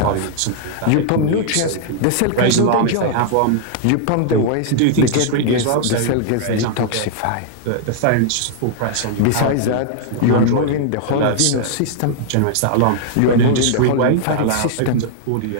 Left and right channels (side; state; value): both; different; correlation -0.01